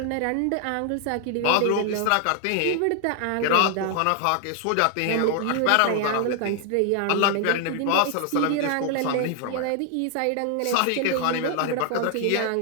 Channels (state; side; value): different; both; correlation 0.00